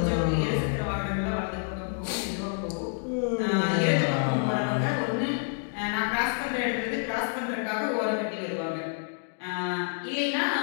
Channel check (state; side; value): silent; right; 59 dB below the other